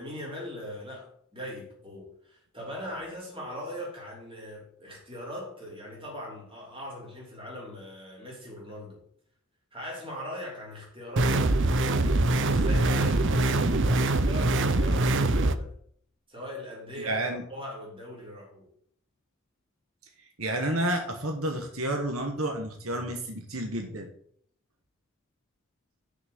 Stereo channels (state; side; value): normal; both; correlation 0.59